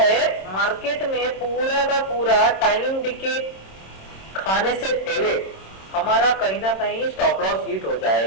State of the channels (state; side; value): late; right; 26 ms